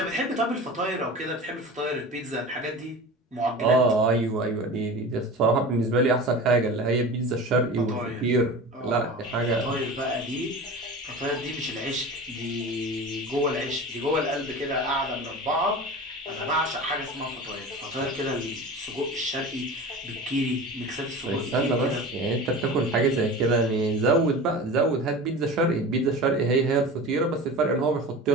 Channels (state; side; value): normal; both; correlation 0.33